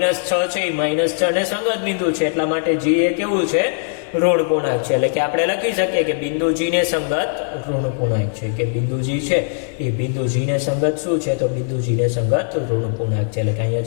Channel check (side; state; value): right; silent; digital silence